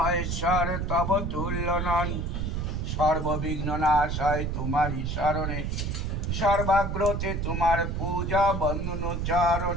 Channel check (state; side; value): noise; right; rumble, 1 dB below the sound